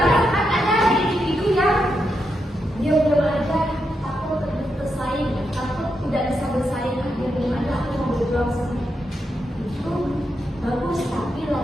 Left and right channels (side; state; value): both; normal; correlation 0.84